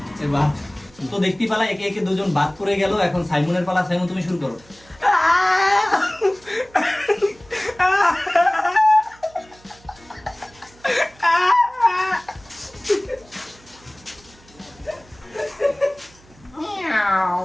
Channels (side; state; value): right; noise; hum, 27 dB below the sound